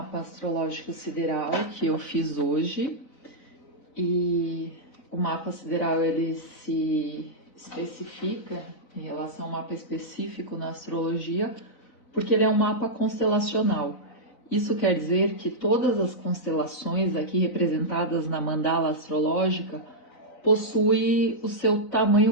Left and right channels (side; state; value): right; late; 4.0 ms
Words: astrológico sideral que eu fiz hoje, e o mapa sideral ele se especifica em relação ao mapa específico na astrologia, porque ele é um mapa constelacional. Isso quer dizer que todas as constelações aqui representadas na mandala astrológica possuem o seu